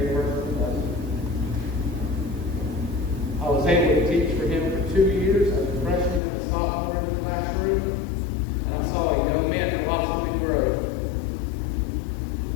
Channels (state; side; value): drops out; right; at 6.2 s